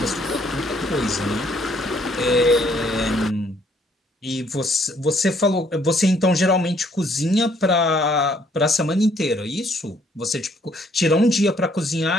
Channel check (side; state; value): both; normal; correlation 0.65